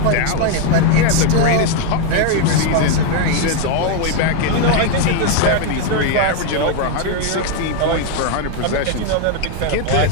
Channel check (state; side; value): different; both; correlation 0.01